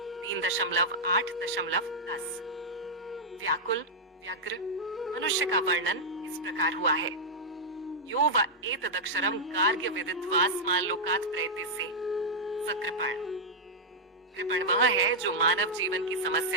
3.8.10 व्याकुल व्यग्र मनुष्य का वर्णन इस प्रकार हुआ है। यो व एतदक्षरम गार्ग्य विदित्वास्मान् लोकात् प्रयतिसे स कृपण। कृपण वह है जो मानव जीवन की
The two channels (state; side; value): normal; both; correlation -0.07